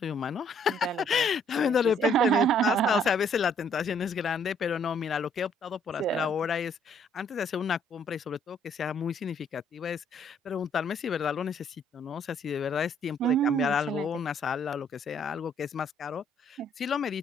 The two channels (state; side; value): normal; both; correlation 0.65